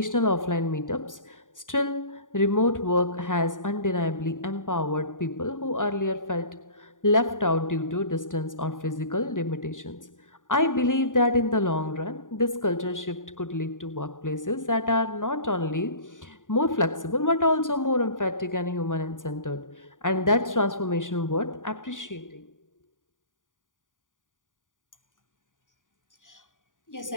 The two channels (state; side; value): late; right; 0.88 ms